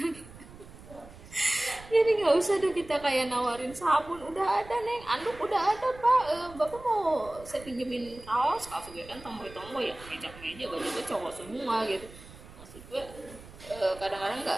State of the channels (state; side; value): noise; right; rumble, 18 dB below the sound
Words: Jadi nggak usah deh kita kayak nawarin sabun, udah ada neng, anduk udah ada pak, bapak mau saya pinjemin kaos gue kan tomboy ya, meja baju gue cowok semua gitu. Maksud gue kadang-kadang